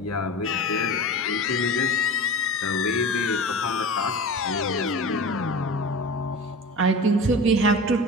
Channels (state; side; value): normal; both; correlation 0.33